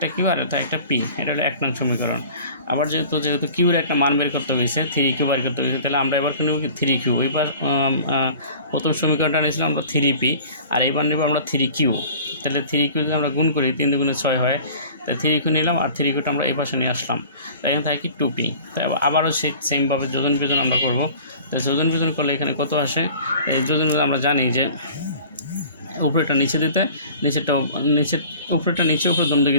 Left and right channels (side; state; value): both; inverted; correlation -0.44